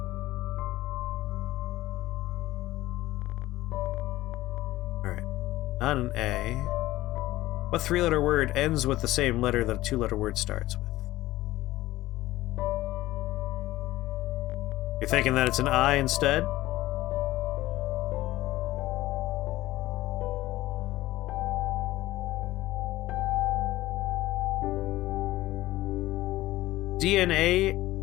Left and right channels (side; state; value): right; quieter; 16.7 dB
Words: Alright. Not an A. What three-letter word ends with the same letter that a two-letter word starts with? You're thinking that it's an I instead? DNA